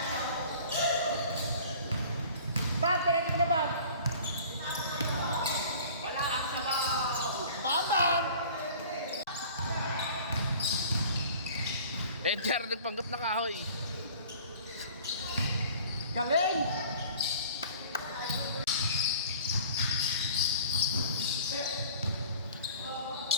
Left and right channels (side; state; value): both; inverted; correlation -0.46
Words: Bam, pinag mo na Bam. Wala ka sa Bam! Bam! Edgar, nagpanggap na kahoy. Galing!